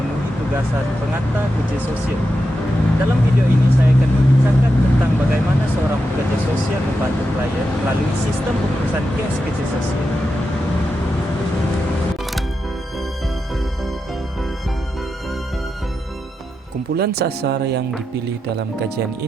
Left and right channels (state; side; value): normal; both; correlation 0.87